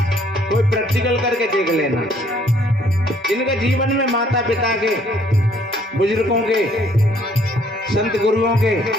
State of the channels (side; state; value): both; normal; correlation 0.63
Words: कोई प्रैक्टिकल करके देख लेना। जिनके जीवन में माता पिता के, बुजुर्गों के, संत गुरुओं के